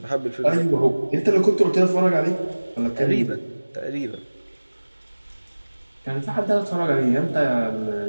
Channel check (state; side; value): inverted; both; correlation -1.00